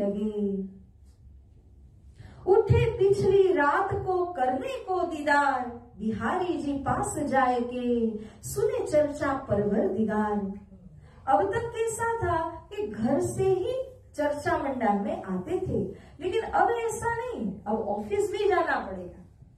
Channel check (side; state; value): both; identical; correlation 1.00